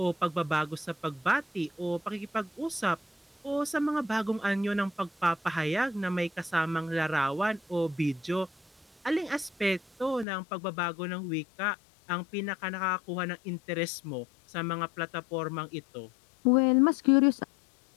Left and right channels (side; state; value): right; drops out; at 10.2 s